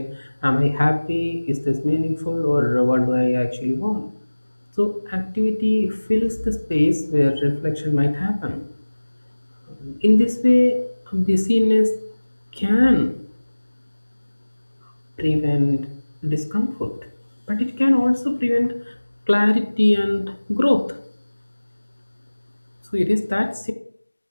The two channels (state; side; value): inverted; both; correlation -1.00